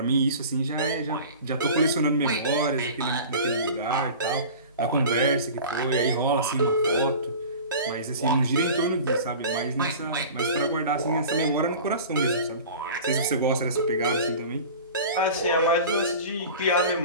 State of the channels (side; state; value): both; inverted; correlation -0.38